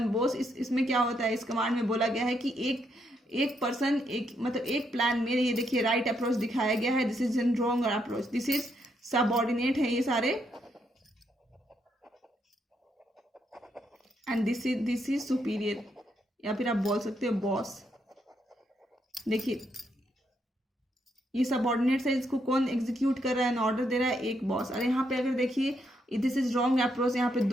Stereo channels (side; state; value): both; normal; correlation 0.77